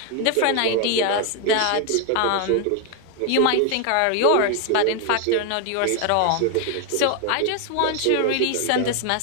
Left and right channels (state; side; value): different; both; correlation 0.00